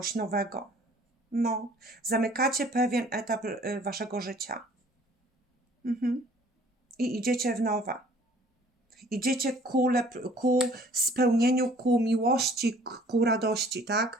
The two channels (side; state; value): both; normal; correlation 0.54